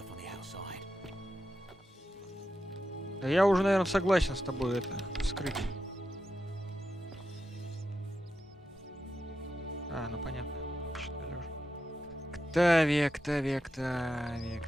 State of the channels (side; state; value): both; normal; correlation 0.88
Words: on the outside. Да я уже, наверное, согласен с тобой это вскрыть. А, ну понятно. Читали уже. Октавия.